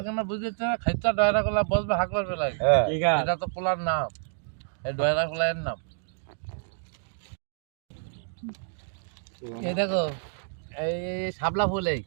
কেন বুঝতে খাইতে ডয়রা খোলা বসবে হাঁকবার বেলায়। ঠিক আছে এটা তো পোলার নাম, এই ডয়রা খোলার নাম। এই দেখো, এই শাপলা ফুল, এই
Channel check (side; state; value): left; silent; digital silence